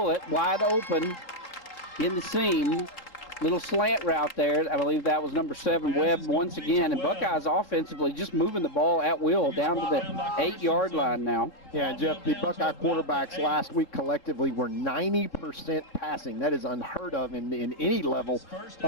wide open in the seam. Little slant route there. I believe that was number 7, Webb, once again. And Buckeyes offensively just moving the ball at will down to the 8-yard line now. Yeah, Jeff, the Buckeye quarterbacks last week collectively were 90% passing. That is unheard of in any level of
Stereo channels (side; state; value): right; late; 3.6 ms